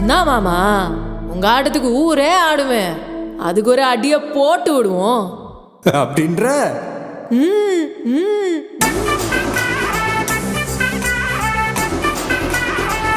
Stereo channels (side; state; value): both; identical; correlation 1.00